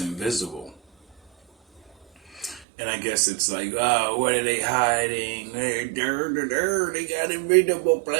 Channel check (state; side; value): drops out; left; at 2.7 s